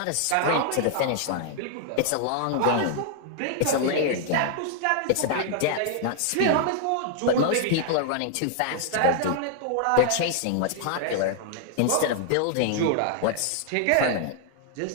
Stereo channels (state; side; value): different; both; correlation -0.01